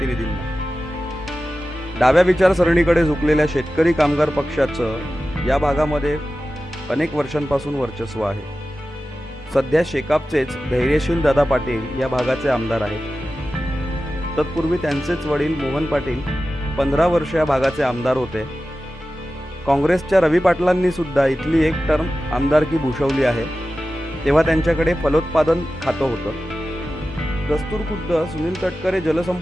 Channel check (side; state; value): both; normal; correlation 0.94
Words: डाव्या विचारसरणीकडे झुकलेल्या शेतकरी कामगार पक्षाचं या भागामध्ये अनेक वर्षांपासून वर्चस्व आहे. सध्या शेकापचेच धैर्यशील दादा पाटील या भागाचे आमदार आहेत. तत्पूर्वी त्यांचेच वडील मोहन पाटील 15 वर्ष या भागाचे आमदार होते. काँग्रेसच्या रवी पाटलांनी सुद्धा इथली एक टर्म आमदारकी भूषवली आहे. तेव्हा त्यांच्याकडे फलोत्पादन खातं होतं. दस्तूर खुद्द सुनील तटकरे